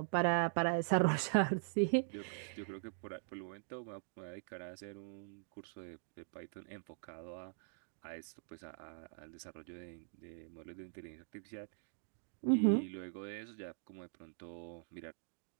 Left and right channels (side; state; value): left; silent; digital silence